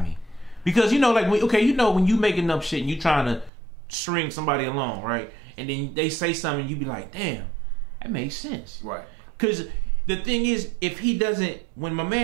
me. Because like when you making up shit and you trying to string somebody along, right? And then they say something, you be like, damn, that makes sense. Right. Because the thing is, if he doesn't, when my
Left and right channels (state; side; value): drops out; left; at 3.5 s